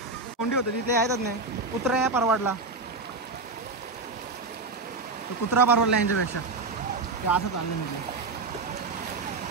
कोंडी होतं तिथे येतच नाही कुत्रा या परवाडला कुत्रा परवडला यांच्यापेक्षा ते असं चाललं म्हटलं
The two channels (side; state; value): left; quieter; 3.7 dB